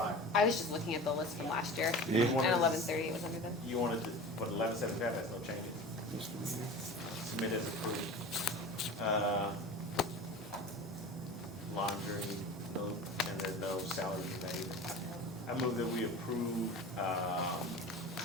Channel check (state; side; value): normal; both; correlation 0.35